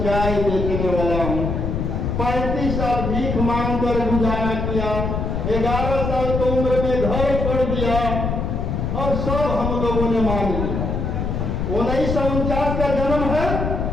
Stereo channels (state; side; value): noise; left; rumble, 1 dB below the sound